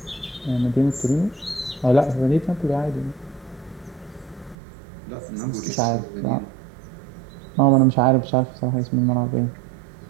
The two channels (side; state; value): left; drops out; at 4.5 s